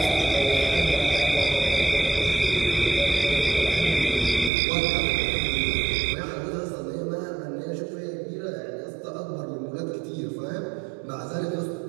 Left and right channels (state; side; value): drops out; left; at 4.5 s